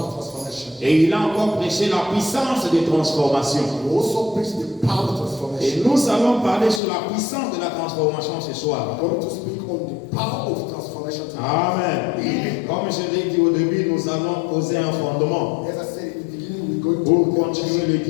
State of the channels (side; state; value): right; drops out; at 6.8 s